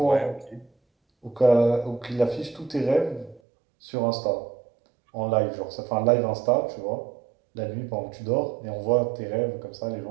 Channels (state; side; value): drops out; left; at 3.4 s